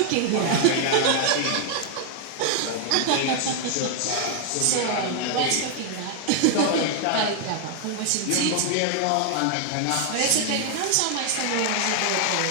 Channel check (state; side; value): different; both; correlation 0.00